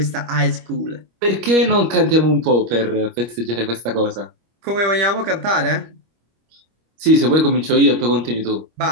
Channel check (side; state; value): left; late; 25 ms